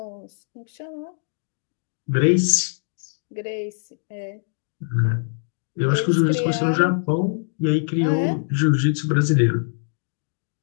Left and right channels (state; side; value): silent; right; digital silence